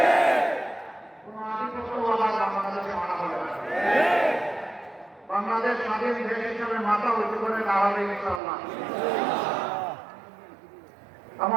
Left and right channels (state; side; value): drops out; left; at 8.4 s